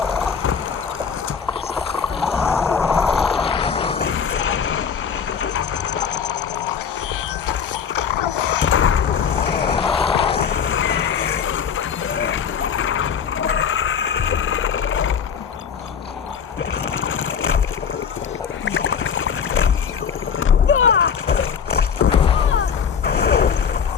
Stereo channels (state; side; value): quieter; right; 7.0 dB